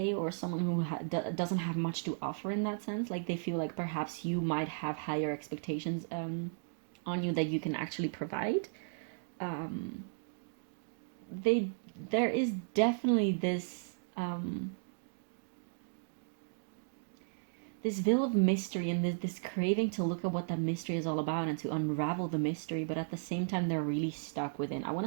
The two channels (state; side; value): silent; left; digital silence